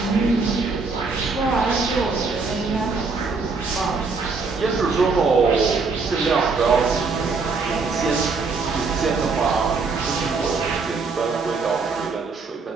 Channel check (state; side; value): quieter; left; 4.4 dB